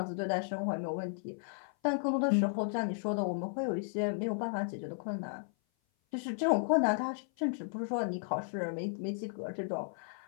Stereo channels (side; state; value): right; silent; 55 dB below the other